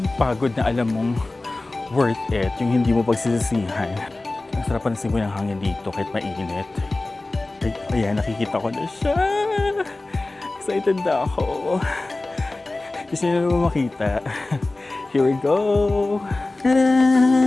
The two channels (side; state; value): right; quieter; 3.0 dB